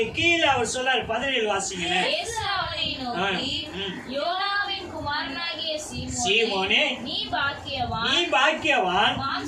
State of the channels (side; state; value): both; identical; correlation 1.00